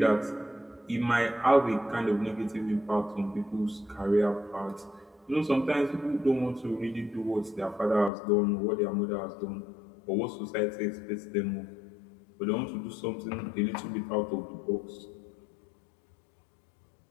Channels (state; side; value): drops out; right; at 8.1 s